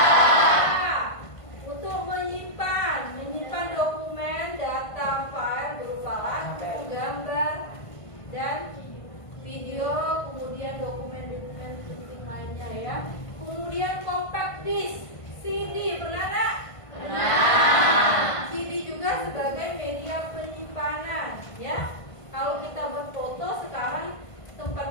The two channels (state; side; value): late; right; 1.5 ms